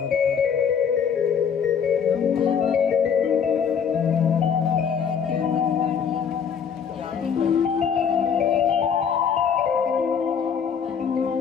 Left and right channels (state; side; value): quieter; right; 7.2 dB